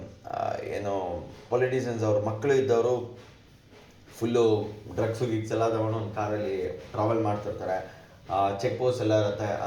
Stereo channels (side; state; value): both; identical; correlation 1.00